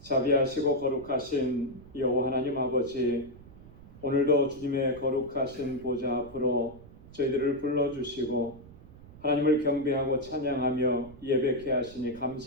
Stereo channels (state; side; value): noise; right; rumble, 19 dB below the sound